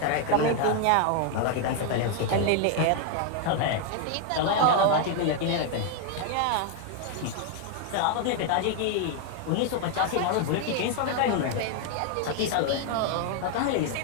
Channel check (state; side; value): different; both; correlation 0.00